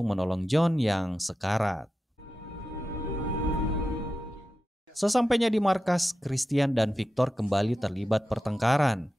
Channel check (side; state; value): both; normal; correlation 0.92